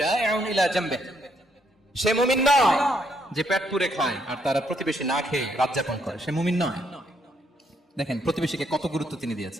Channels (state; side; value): normal; both; correlation 0.73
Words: ইলা জামবিহি, সে মুমিন নয় যে পেট পুরে খায় আর তার প্রতিবেশী না খেয়ে রাত যাপন করে, সে মুমিন নয়। দেখেন প্রতিবেশীকে কত গুরুত্ব তিনি